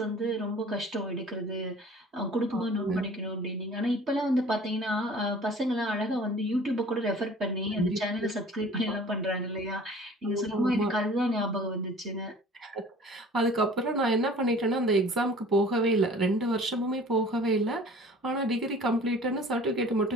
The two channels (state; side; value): normal; both; correlation 0.47